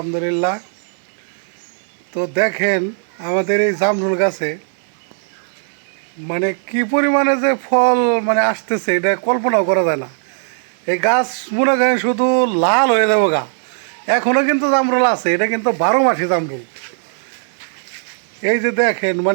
তো দেখেন আমাদের এই জামরুল গাছে মানে কি পরিমাণে যে ফল আসতেছে এটা কল্পনাও করা যায় না। এই গাছ মনে করেন শুধু লাল হয়ে যাবো গা। এখনও কিন্তু জামরুল আছে, এটা কিন্তু 12 মাসি জামরুল। এই যে দেখেন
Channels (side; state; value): left; silent; 61 dB below the other